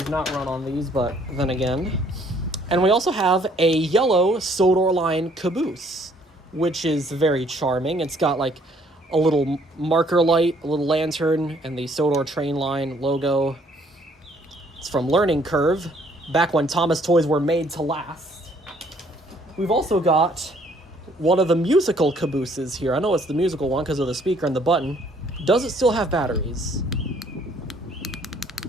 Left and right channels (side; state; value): both; normal; correlation 0.63